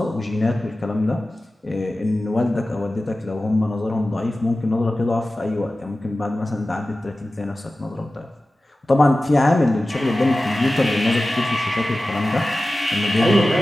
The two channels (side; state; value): both; normal; correlation 0.96